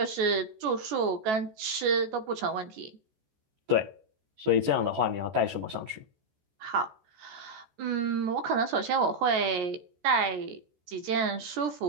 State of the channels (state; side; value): late; left; 14 ms